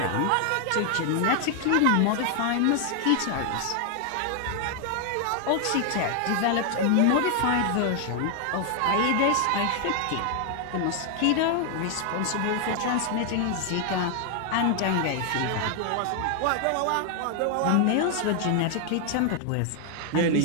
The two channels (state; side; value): different; both; correlation 0.00